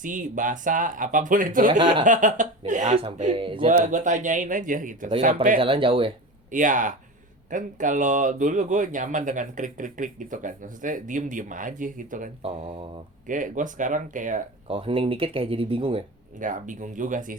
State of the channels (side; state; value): both; normal; correlation 0.28